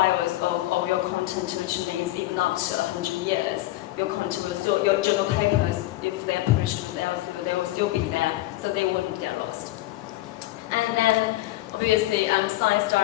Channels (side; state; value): right; quieter; 17.1 dB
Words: of your content, which means even after 100 years, your content will still, your journal papers, if they're published with Elsevier, they will still be there, so they wouldn't get lost. And then, obviously, Science